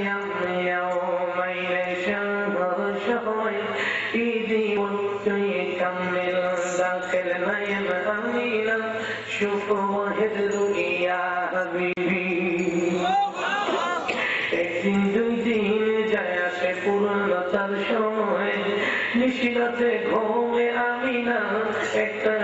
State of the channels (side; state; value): both; identical; correlation 1.00